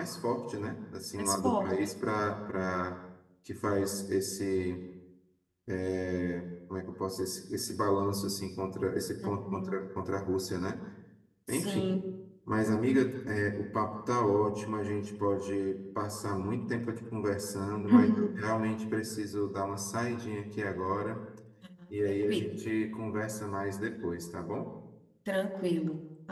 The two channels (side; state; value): both; identical; correlation 1.00